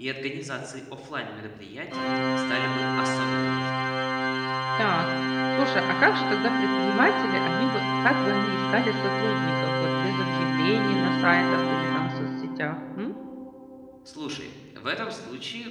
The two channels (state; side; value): identical; both; correlation 1.00